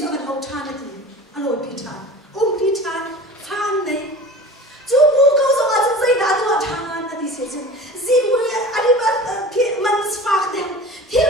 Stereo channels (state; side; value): normal; both; correlation 0.38